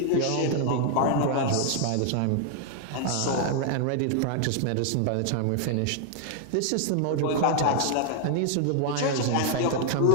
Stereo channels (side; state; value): both; different; correlation 0.00